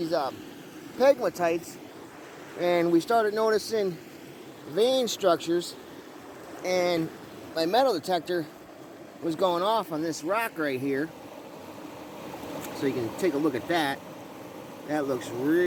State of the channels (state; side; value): identical; both; correlation 1.00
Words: pegmatites, and we started noticing vein structures, and my metal detector was going off on this rock right here. So you can take a look at that. That looks